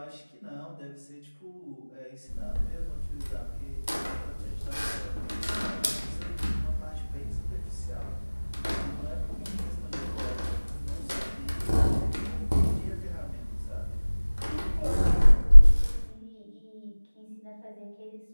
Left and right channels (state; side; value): inverted; both; correlation -1.00